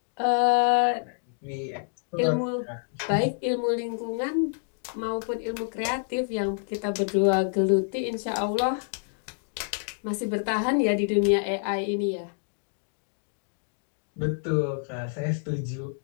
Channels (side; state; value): right; silent; digital silence